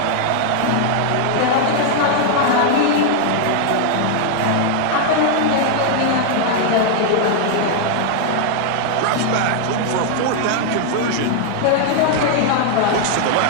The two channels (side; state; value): both; different; correlation 0.00